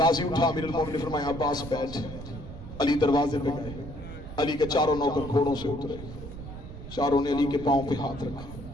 اٹھا. امیر المومنین نے فرمایا عباس بیٹھ. علی دروازے پہ گئے. علی کے 4 نوکر گھوڑوں سے اترے. چاروں نے علی کے پاؤں پہ ہاتھ رکھا.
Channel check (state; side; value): noise; right; rumble, 12 dB below the sound